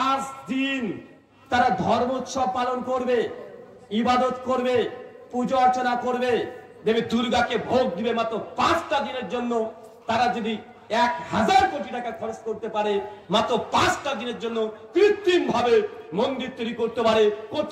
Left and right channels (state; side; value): identical; both; correlation 1.00